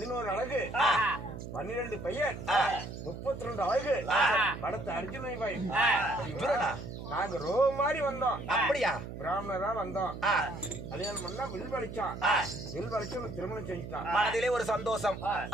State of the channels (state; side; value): noise; right; hum, 9 dB below the sound